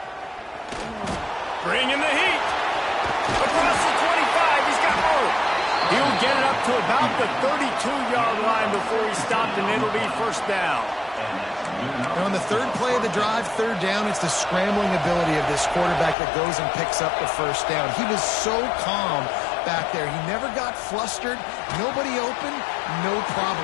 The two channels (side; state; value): right; drops out; at 16.2 s